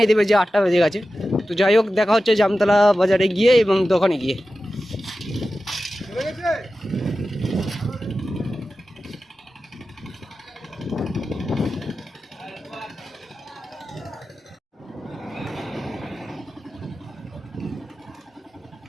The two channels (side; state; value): both; normal; correlation 0.94